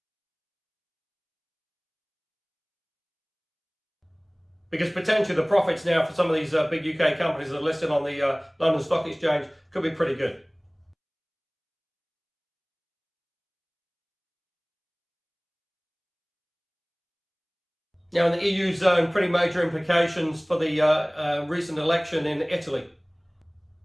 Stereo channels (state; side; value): identical; both; correlation 1.00